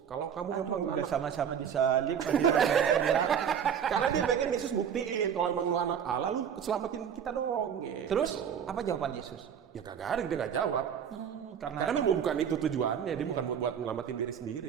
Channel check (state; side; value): quieter; left; 8.1 dB